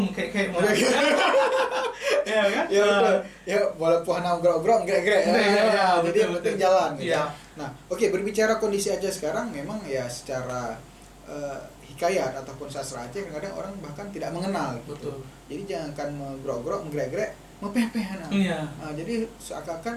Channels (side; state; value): both; identical; correlation 1.00